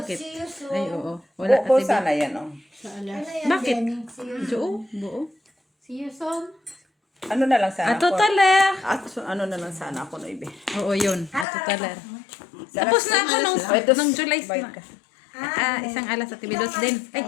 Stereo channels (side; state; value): right; drops out; at 11.5 s